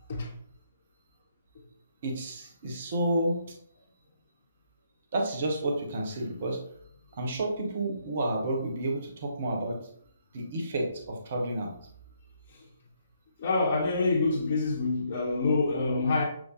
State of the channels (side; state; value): both; inverted; correlation -0.72